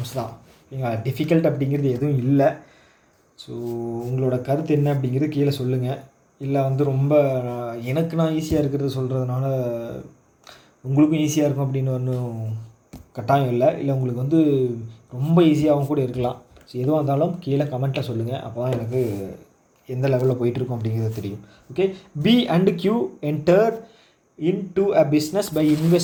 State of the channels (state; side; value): identical; both; correlation 1.00